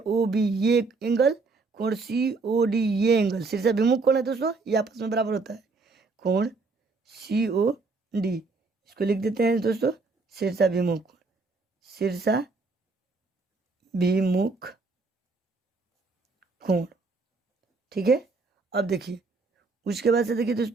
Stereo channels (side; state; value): left; quieter; 3.9 dB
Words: बी ये एंगल, कोण सी ओ डी ये एंगल, शीर्षाभिमुख कोण है दोस्तों, ये आपस में बराबर होता है। कोण सी ओ डी, इसको लिख देते हैं दोस्तों शीर्षाभिमुख कोण, शीर्षाभिमुख कोण। ठीक है, अब देखिए उसके बाद से देखिए